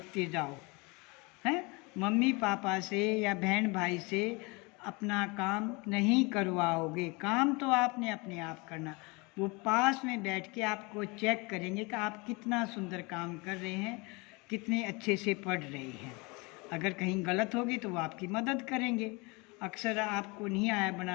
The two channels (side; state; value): right; quieter; 27.4 dB